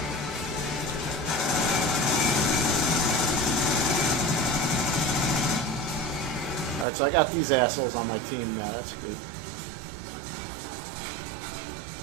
Alright, so I got these assholes on my team now. That's good.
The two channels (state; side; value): drops out; left; at 6.9 s